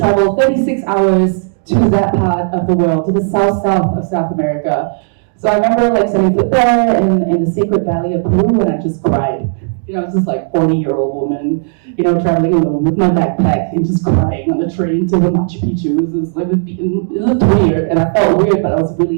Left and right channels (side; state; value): left; silent; 69 dB below the other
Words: 36 hours to that part of the world, to the south of South America. So I remember setting foot there in the Sacred Valley of Peru, and I just cried. I was just 40-year-old woman, traveling alone with my backpack and just crying on the train to the Machu Picchu. It looked weird, and I felt weird, but I was